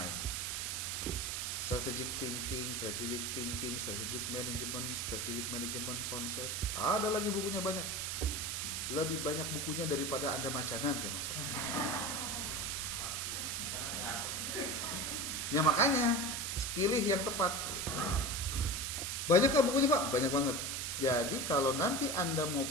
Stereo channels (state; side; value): noise; right; hiss, 2 dB below the sound